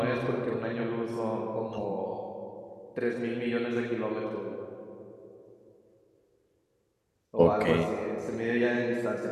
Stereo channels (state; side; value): identical; both; correlation 1.00